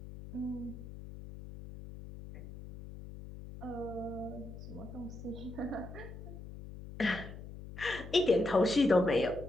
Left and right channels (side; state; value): left; noise; hum, 13 dB below the sound